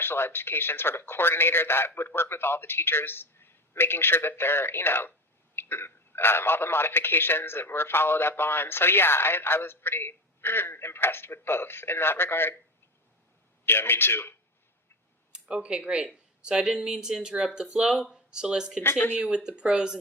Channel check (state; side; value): normal; both; correlation 0.25